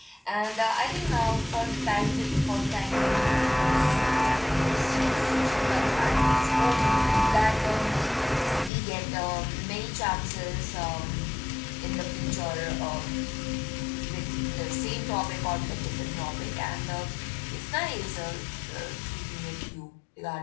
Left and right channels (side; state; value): right; drops out; at 8.7 s